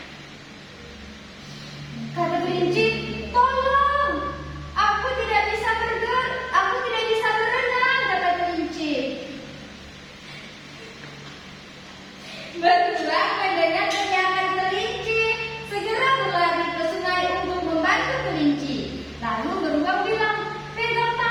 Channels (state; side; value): identical; both; correlation 1.00